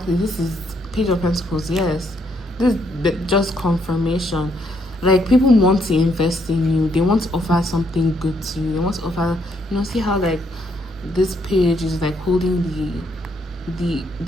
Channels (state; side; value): normal; both; correlation 0.73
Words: This is Page of Pentacles. Yes, this is just confirmation. Like people want to invest in you. They want to offer something good to you. They want to offer. See how like this page is like holding the